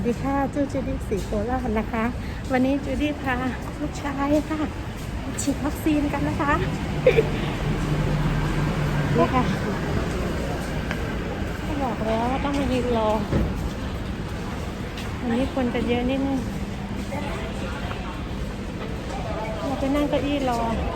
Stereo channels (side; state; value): both; identical; correlation 1.00